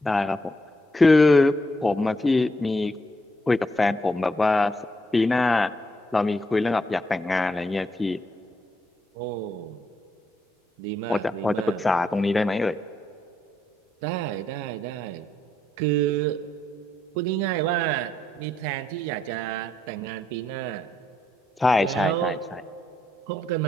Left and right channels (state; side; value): normal; both; correlation 0.77